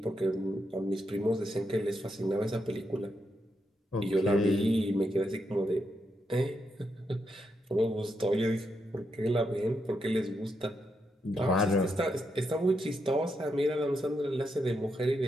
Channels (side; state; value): both; normal; correlation 0.82